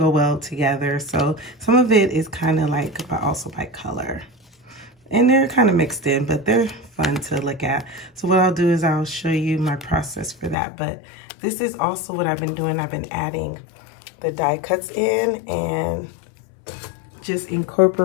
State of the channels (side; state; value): right; drops out; at 10.6 s